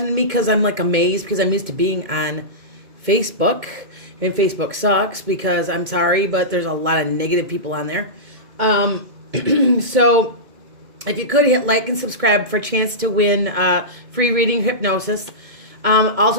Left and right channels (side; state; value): left; late; 2.2 ms